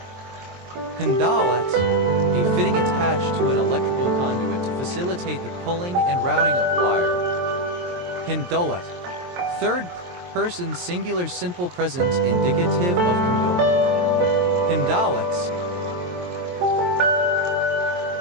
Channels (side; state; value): left; late; 23 ms